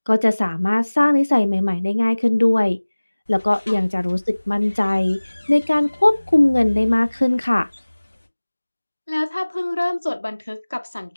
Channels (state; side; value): inverted; both; correlation -1.00